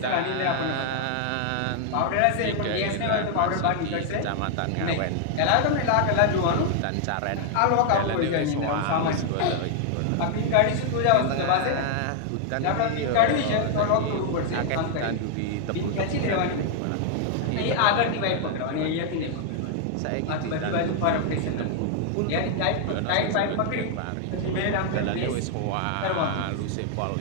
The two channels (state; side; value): different; both; correlation 0.00